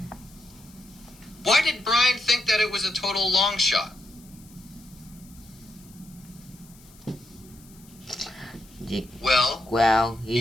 Why did Brian think that it was a total long shot? Well,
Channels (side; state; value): left; noise; hiss, 24 dB below the sound